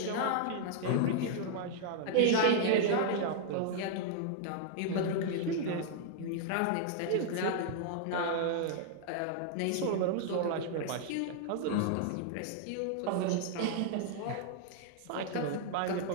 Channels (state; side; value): different; both; correlation 0.00